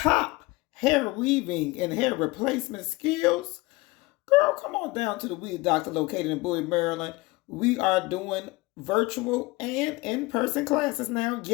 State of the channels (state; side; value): quieter; right; 22.4 dB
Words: hair weaving and hair replacement skills? Girl, come on down to the Weave Doctor located in Bowie, Maryland. We are doing virtual and in-person classes now.